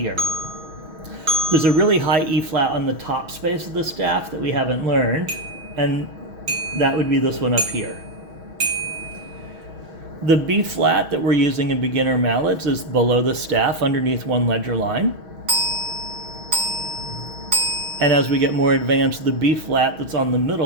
There's a really high E flat on the top space of the staff that we haven't learned, and that would be this one up here. The B flat that we're using in beginner mallets is below the staff underneath one ledger line. And as we get more advanced, the B flat that's on the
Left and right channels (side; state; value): left; late; 6.2 ms